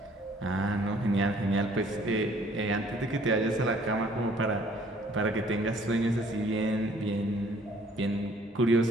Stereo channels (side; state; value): both; normal; correlation 0.59